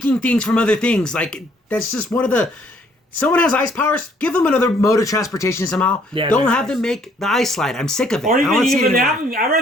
things from other things. Like, that's just one of the Someone has ice powers. Give them another mode of transportation somehow. Yeah, Don't they're have nice. them make the ice slide. I'm sick of it. Or I don't wanna see it even anymore. I'd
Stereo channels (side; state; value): both; normal; correlation 0.64